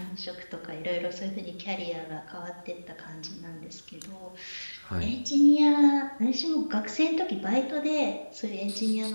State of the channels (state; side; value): inverted; both; correlation -1.00